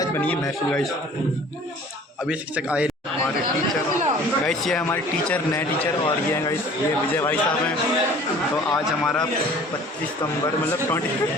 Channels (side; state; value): both; normal; correlation 0.49